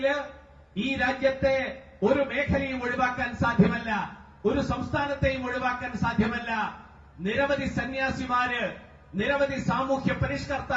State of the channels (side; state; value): both; identical; correlation 1.00